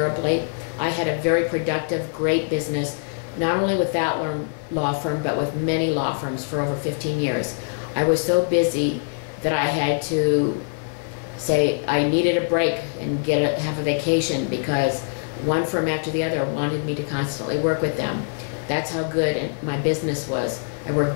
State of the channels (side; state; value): right; silent; 61 dB below the other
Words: I had a very productive, great business, not only with that law firm, but with many law firms for over 15 years. I was so busy that I had to say I needed a break and have a vacation because one firm after the other wanted me to constantly work with them. That's how good my business was. I